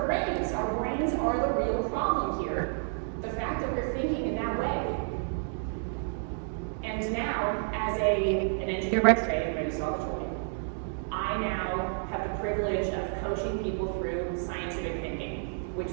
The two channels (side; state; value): left; silent; 58 dB below the other